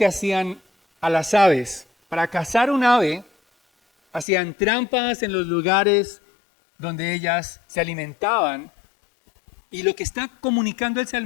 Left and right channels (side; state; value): right; drops out; at 4.2 s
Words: hacían a las aves. Para cazar un ave, hacían trampas en los lugares donde ellas se alimentaban. Y lo que está comunicando el